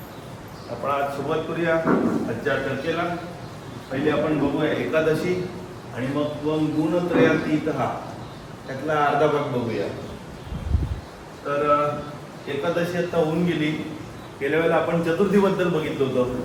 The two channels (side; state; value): both; identical; correlation 1.00